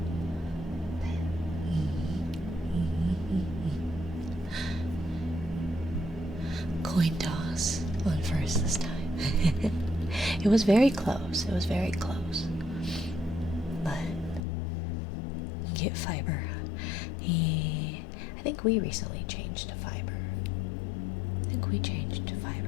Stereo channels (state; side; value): drops out; right; at 14.4 s